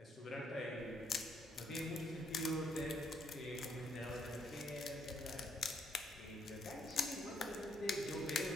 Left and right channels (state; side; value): normal; both; correlation 0.71